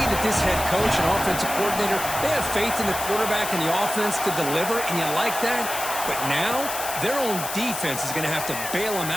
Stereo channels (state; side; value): noise; left; hiss, 6 dB below the sound